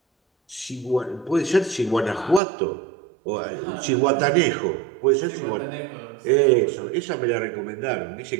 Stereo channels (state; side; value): drops out; left; at 2.4 s